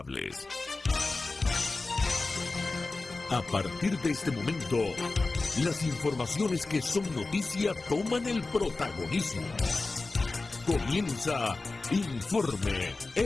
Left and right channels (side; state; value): right; quieter; 3.5 dB